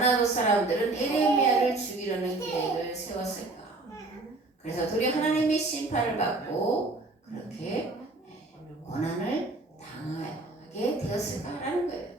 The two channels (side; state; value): left; quieter; 3.1 dB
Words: 사람들은 예레미야를 죽이려는 계획을 세웠을까? 그래서 둘이 하나님의 심판을 받고 그렇게 고난을 당하게 되었을까라는 거예요.